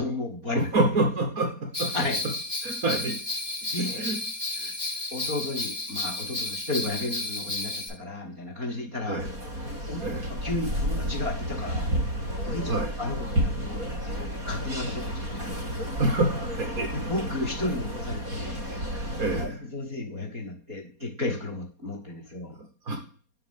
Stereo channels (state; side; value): late; left; 4.2 ms